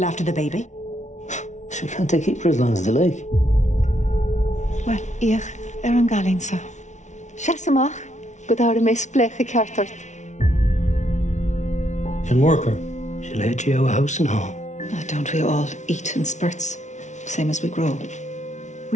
after the baby? She can't they keep her as long as they like? Wel, ich an galinsa. Siasamach, go dáir a mes blecha ceartart. Can work her. She'll head you out of house and home. Oh, don't we all eat in spurts, same as we grow?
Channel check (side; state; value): right; late; 0.35 ms